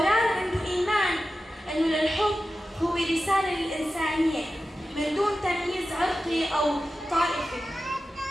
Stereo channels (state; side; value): normal; both; correlation 0.93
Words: عنده إيمان أنه للحب هو رسالة للإنسانية من دون تمييز عرقي أو طائفي.